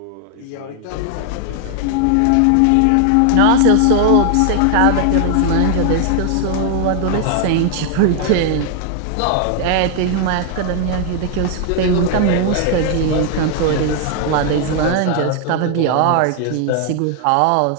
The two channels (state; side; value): different; both; correlation 0.00